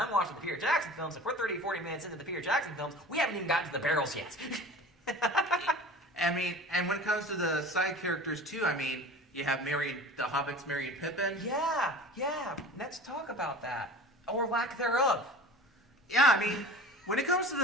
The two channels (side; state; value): both; normal; correlation 0.39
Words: watching the Peter Jackson films, if we're 30, 40 minutes into the Peter Jackson films, we haven't even gotten to the barrels yet. I mean, and when it comes to the side characters, too, I mean, you have the Hobbits, Merry and Pippin. Yeah. Let's talk about that. Or lack thereof. Yeah, I mean, when it comes to